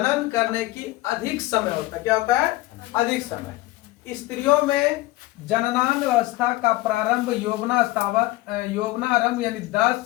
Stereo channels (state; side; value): quieter; right; 18.9 dB